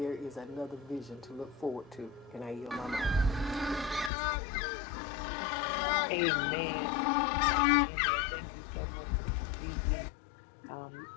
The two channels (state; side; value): drops out; right; at 4.1 s